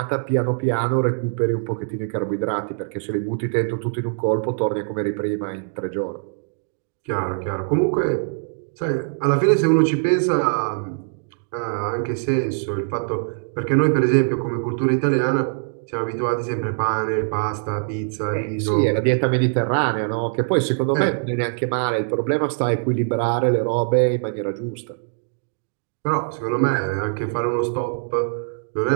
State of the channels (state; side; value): silent; left; digital silence